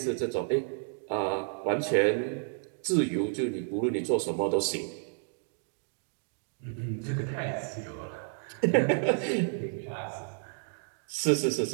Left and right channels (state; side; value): silent; left; 57 dB below the other